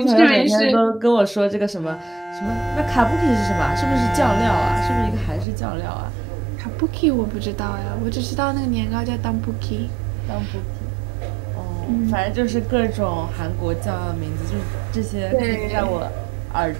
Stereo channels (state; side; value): drops out; left; at 5.5 s